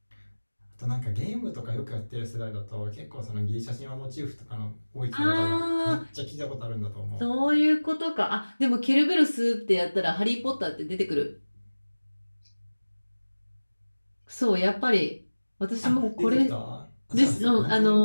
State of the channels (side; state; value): both; inverted; correlation -1.00